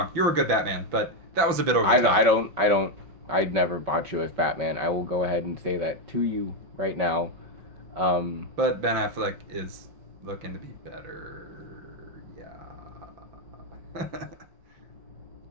you're a good Batman, but that was a bit over the top. I'd never bought you as Batman. I will go ahead and say that to you right now. But Ben Affleck is looking to be better.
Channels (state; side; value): late; left; 5.3 ms